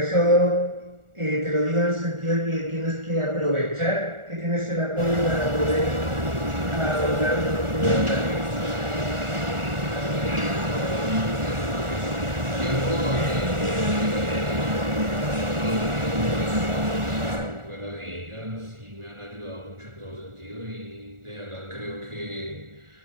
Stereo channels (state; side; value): late; left; 1.4 ms